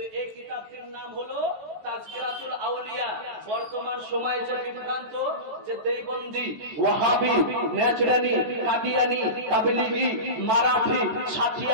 এই কিতাবটির নাম হলো তাজকিরাতুল আউলিয়া। বর্তমান সময়ে যে বিভ্রান্ত, যে দেওবন্দি, ওয়াহাবি, নেচরানি, কাদিয়ানি, তাবলিগি, মারাঠি,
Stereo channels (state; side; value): late; left; 14 ms